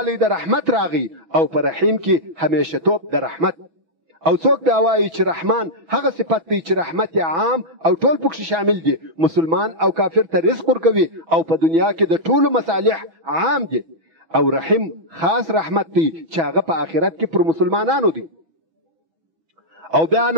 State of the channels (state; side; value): late; left; 6.0 ms